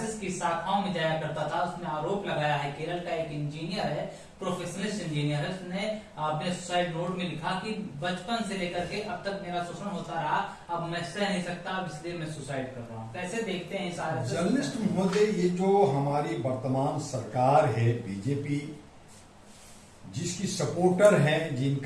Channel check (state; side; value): identical; both; correlation 1.00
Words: की शाखाओं में जाया करता था। उसने आरोप लगाया है, केरल का एक इंजीनियर है, प्रोफेशनलिस्ट इंजीनियर है, उसने अपने सुसाइड नोट में लिखा कि बचपन से लेकर के अब तक मेरा शोषण होता रहा, अब मैं सह नहीं सकता, अब इसलिए मैं सुसाइड कर रहा हूँ। कैसे देखते हैं इस आरएसएस? जर्नलिस्ट महोदय, ये जो हमारी वर्तमान सरकार है बीजेपी, जिसकी सपोर्टर हैं,